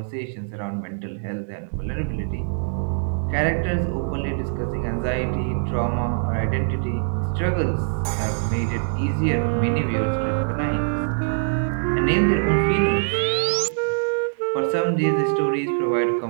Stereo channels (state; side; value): silent; left; digital silence